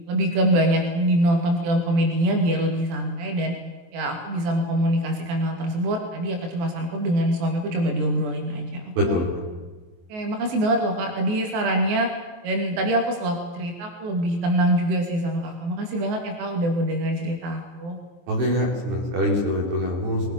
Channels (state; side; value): late; left; 23 ms